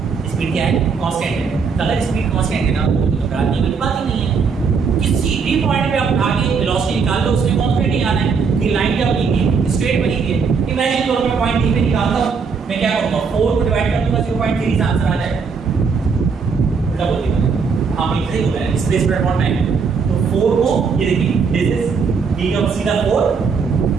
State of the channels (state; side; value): quieter; left; 5.5 dB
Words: स्पीड क्या है कांस्टेंट है। तो अगर स्पीड कांस्टेंट है ना तो घबराने वाली बात ही नहीं है। किसी भी पॉइंट पे आप आगे वेलोसिटी निकाल लो, उसमें कांस्टेंट ही आना है। ये लाइन क्या बनेगी स्ट्रेट बनेगी। इमेजिन करो मैं पॉइंट डी पे निकालता हूं, मैं क्या करूंगा 4 को डिवाइड कर दूंगा 0.3 से आंसर आ जाएगा। उल्टा बोल दिया हां बिल्कुल सही बोला है, डिस्प्लेसमेंट अपॉन टाइम। तो 4 को ये देखिए दिस इज डी का सीधा 4